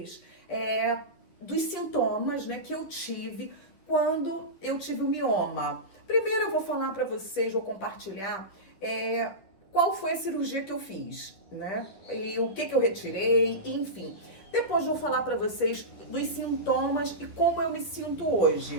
dos sintomas, né, que eu tive quando eu tive o mioma. Primeiro eu vou falar pra vocês, vou compartilhar qual foi a cirurgia que eu fiz, né? E o que eu retirei, enfim. Depois vou falar pra vocês dos sintomas e como eu me sinto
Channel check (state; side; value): late; right; 11 ms